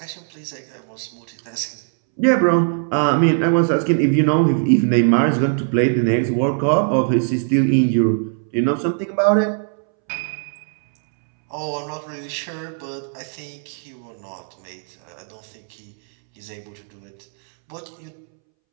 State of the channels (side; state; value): left; silent; 65 dB below the other